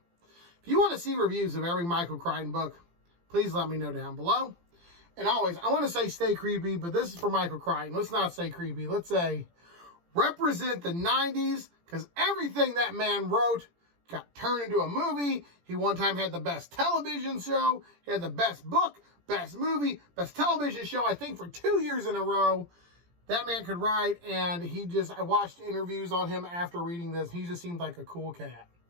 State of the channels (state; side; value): late; left; 17 ms